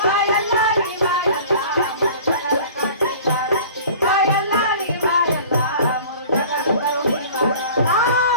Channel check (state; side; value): inverted; both; correlation -0.44